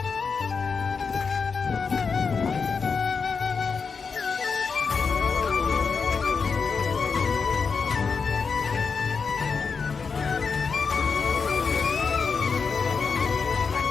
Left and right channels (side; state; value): right; quieter; 5.3 dB